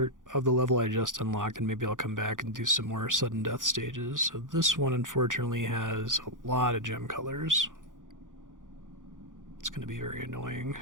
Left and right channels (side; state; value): left; late; 0.88 ms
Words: of the level I just unlocked, and maybe I'll come back and do some more sudden death stages. So this one, unfortunately, has a lot of gem colors. It's going to be very annoying.